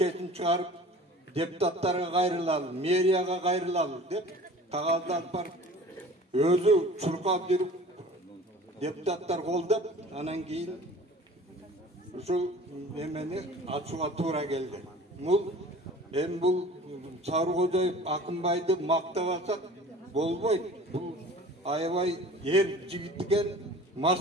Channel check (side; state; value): both; normal; correlation 0.44